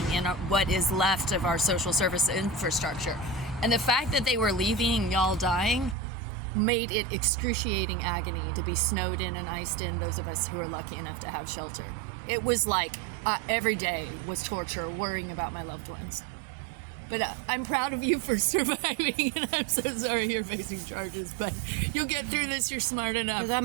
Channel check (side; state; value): left; drops out; at 6.0 s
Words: in what is left of our social service infrastructure. And the fact that they were leaving y'all dying made it excruciating agony to be snowed in and iced in, those of us who are lucky enough to have shelter. It was like every day was torture, worrying about my loved ones. But I'm proud of you for surviving, and I'm so sorry you're facing charges, but you'll get through this. You're smart enough. Because